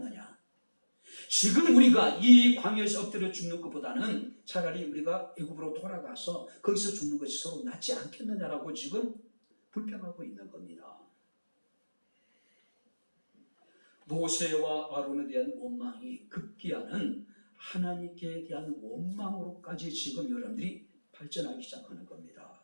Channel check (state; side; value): inverted; both; correlation -1.00